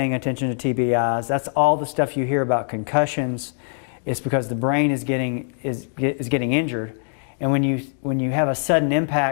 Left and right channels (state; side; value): silent; right; 56 dB below the other